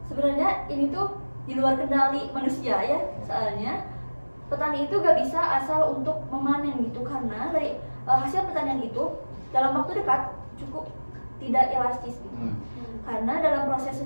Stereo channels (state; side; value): inverted; both; correlation -1.00